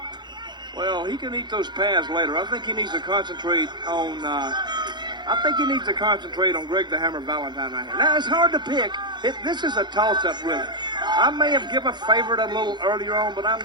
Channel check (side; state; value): left; late; 0.21 ms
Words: Well, he can eat those pads later. I think he needs to concentrate on. Greg the Hammer Valentine right here. Now it's hard to pick. This is a toss-up, really. I may have given a favorite a little earlier on, but I'm